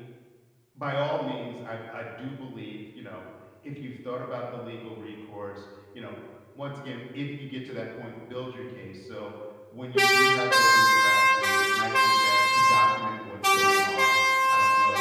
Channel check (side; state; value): both; identical; correlation 1.00